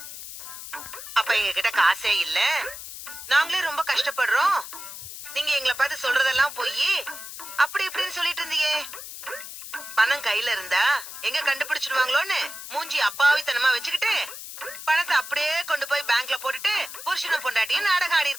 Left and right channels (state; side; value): noise; left; hiss, 11 dB below the sound